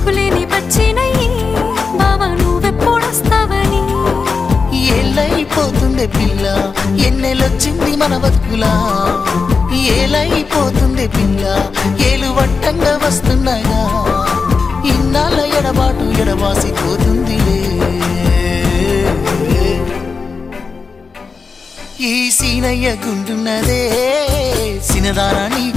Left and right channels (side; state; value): right; quieter; 4.8 dB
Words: పచ్చినయ్యి బావా నువ్వెప్పుడొస్తావని ఏళ్ళైపోతుంది పిల్ల ఎన్నెలొచ్చింది మన బతుకులా ఏలైపోతుంది పిల్ల ఏలు వట్టంగా వస్తున్నాగా ఇన్నాళ్ళ ఎడబాటు ఎడబాసిపోతుందిలే ఈ సీనయ్య గుంటున్నదే సినదారా నీ